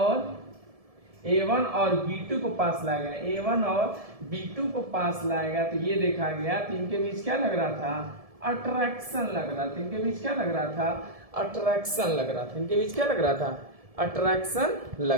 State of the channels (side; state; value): left; late; 1.7 ms